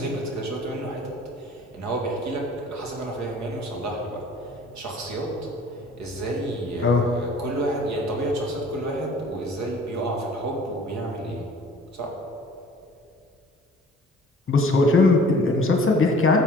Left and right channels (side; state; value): both; normal; correlation 0.50